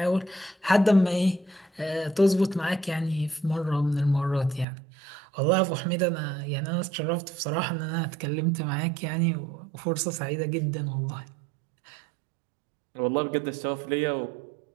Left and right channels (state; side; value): drops out; left; at 4.7 s